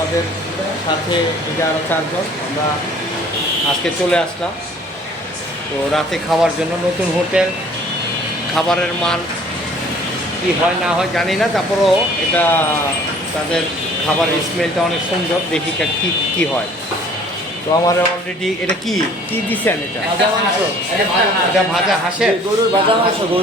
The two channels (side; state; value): both; normal; correlation 0.53